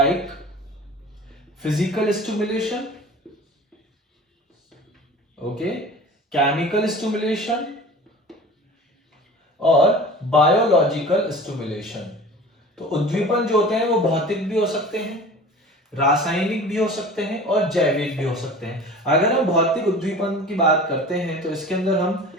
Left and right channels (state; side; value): normal; both; correlation 0.40